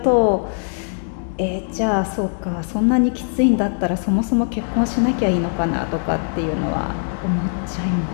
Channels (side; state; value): right; silent; digital silence